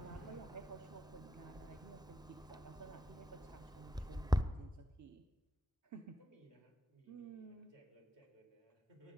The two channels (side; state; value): both; normal; correlation 0.86